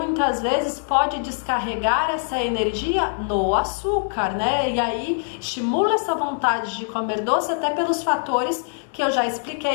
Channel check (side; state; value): right; silent; 63 dB below the other